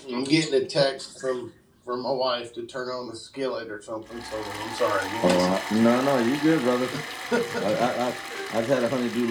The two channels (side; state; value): both; identical; correlation 1.00